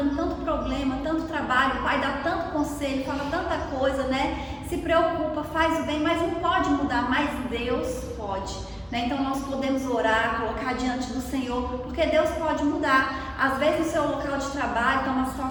tanto problema, tanto trabalho, o pai dá tanto conselho, fala tanta coisa, né? Se preocupa, faz o bem, mas não pode mudar, mas Deus pode, né? Então nós podemos orar, colocar diante do Senhor, porque Deus pode mudar. Às vezes no seu local de trabalho está uma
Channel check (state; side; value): identical; both; correlation 1.00